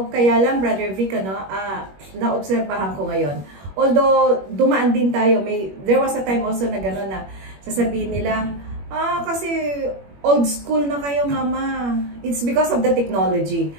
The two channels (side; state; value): left; late; 21 ms